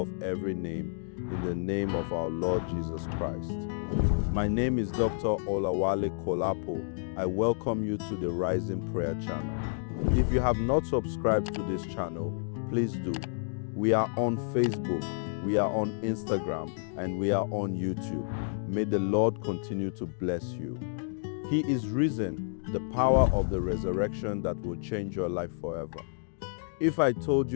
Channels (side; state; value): right; silent; digital silence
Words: every name, in the name of our Lord Jesus Christ. My name is Dr. Olawale Kolapo. I welcome you to the Rising Prayer channel. If you have not subscribed to this channel, please do. We are on Facebook, we are on Instagram, and we are on YouTube. May the Lord continue to bless you. He is risen, the power of the resurrection that will change your life forever. If I told